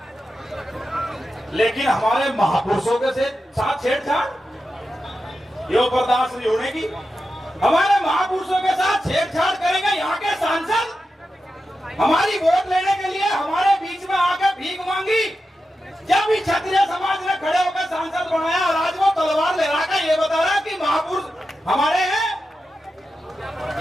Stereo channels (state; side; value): normal; both; correlation 0.90